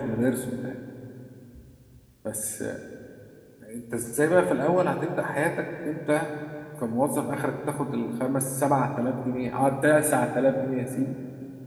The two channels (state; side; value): identical; both; correlation 1.00